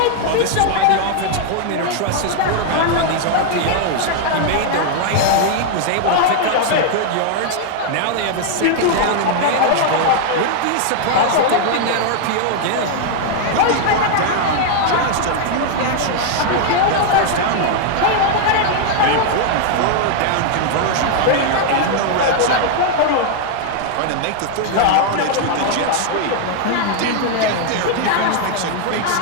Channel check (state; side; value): different; both; correlation 0.00